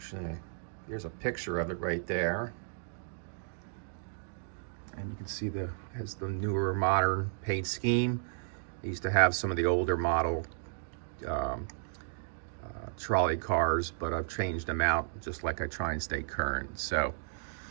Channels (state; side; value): silent; left; digital silence